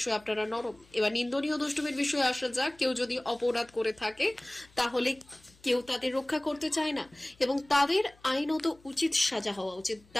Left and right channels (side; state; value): left; noise; hum, 29 dB below the sound